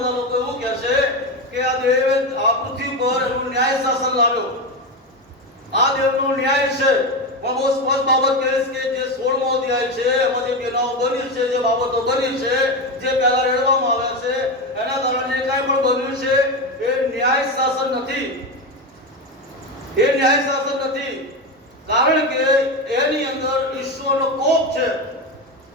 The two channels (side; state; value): both; normal; correlation 0.16